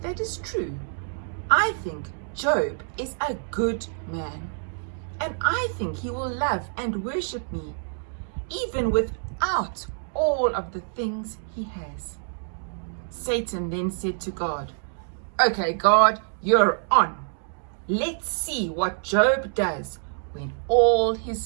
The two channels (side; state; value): left; silent; digital silence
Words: that is true. I think Job is a good man, and I think he will love and worship me even without all of the things he has." Satan then said to God, "Okay, God, you're on. Let's see what Job does when all his